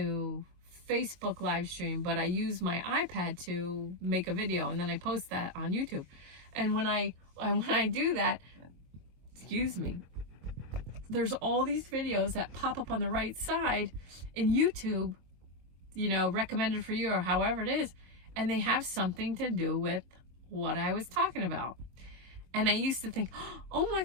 Facebook live stream, but I use my iPad to make a video and then I post that on YouTube. And when I do that, excuse me, there's all these videos that pop up on the right side in YouTube, you know, recommended for you or however it is, and they have something to do with what I was talking about. And I used to think, oh my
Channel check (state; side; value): late; left; 23 ms